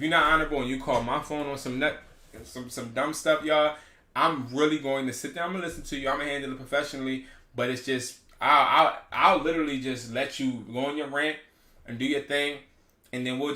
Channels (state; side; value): identical; both; correlation 1.00